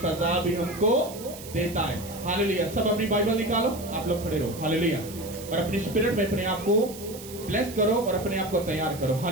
भी हमको देता है। हालेलुया। सब अपनी बाइबल निकालो, आप लोग खड़े रहो। हालेलुया। और अपनी स्पिरिट में अपने आप को ब्लेस करो और अपने आप को तैयार करो।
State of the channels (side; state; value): right; noise; hiss, 15 dB below the sound